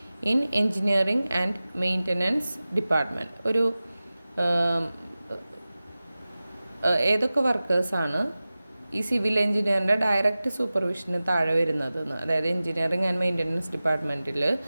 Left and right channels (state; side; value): inverted; both; correlation -0.97